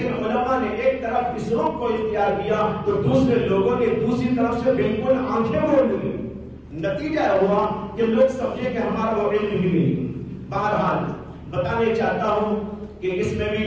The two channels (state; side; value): identical; both; correlation 1.00